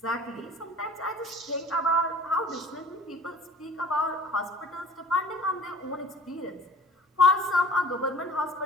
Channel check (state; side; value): normal; both; correlation 0.47